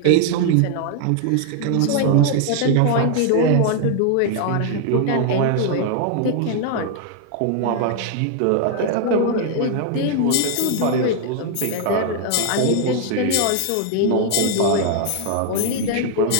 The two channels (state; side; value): different; both; correlation 0.00